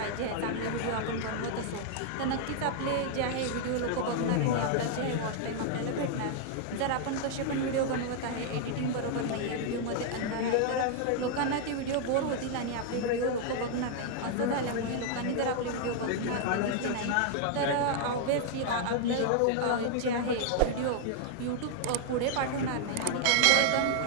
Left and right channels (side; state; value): both; different; correlation 0.00